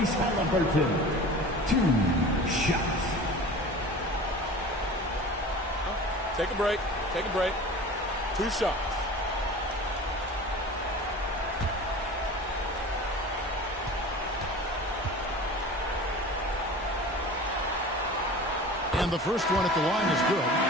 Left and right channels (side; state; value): both; normal; correlation 0.38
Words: Halliburton. 2 shots. Take a break. Take a break. 2 shots. And the first one at the line is good.